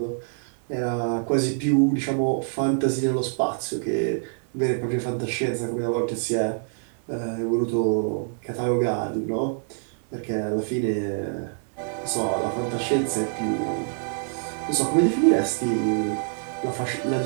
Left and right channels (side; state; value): left; silent; digital silence